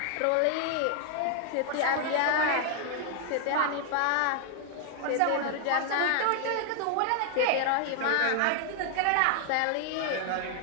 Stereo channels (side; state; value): both; different; correlation 0.00